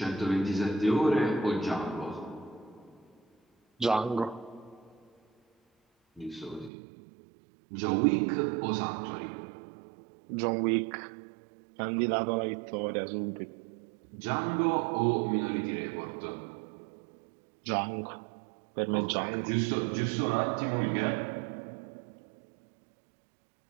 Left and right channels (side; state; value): left; drops out; at 6.7 s